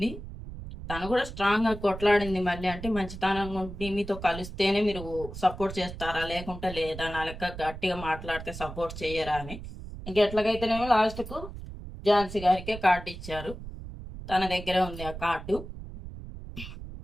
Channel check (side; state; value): right; noise; rumble, 11 dB below the sound